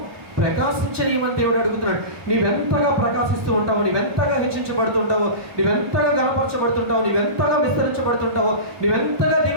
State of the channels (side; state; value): left; late; 1.2 ms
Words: ప్రకాశించనీయమని దేవుడు అడుగుతున్నాడు. నీవెంతగా ప్రకాశిస్తూ ఉంటావో, నీవెంతగా హెచ్చించబడుతుంటావో, నీవెంతగా గణపరచబడుతుంటావో, నీవెంతగా విస్తరించబడుతుంటావో, నీవెంతగా